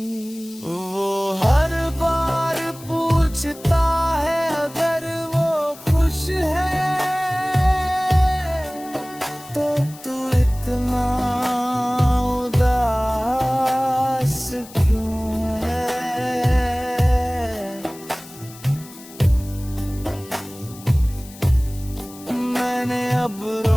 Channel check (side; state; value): left; noise; hiss, 19 dB below the sound